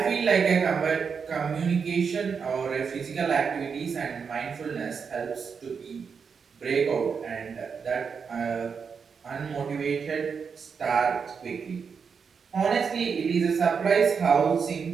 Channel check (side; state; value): left; quieter; 6.0 dB